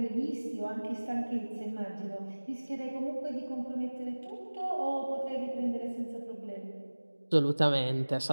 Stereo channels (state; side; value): inverted; both; correlation -1.00